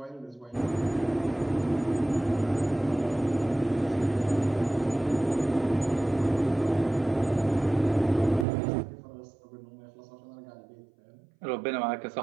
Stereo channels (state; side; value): drops out; left; at 8.5 s